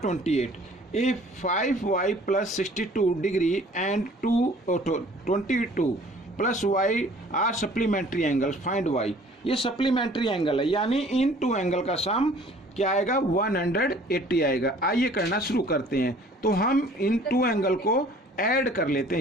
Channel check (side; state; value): both; normal; correlation 0.53